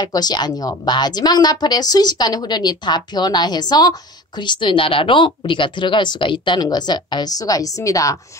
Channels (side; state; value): both; normal; correlation 0.38